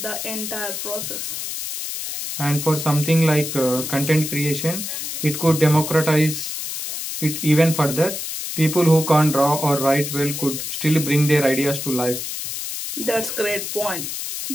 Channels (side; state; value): left; noise; hiss, 5 dB below the sound